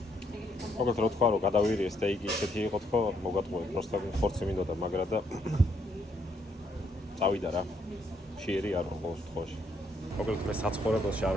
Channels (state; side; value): normal; both; correlation 0.73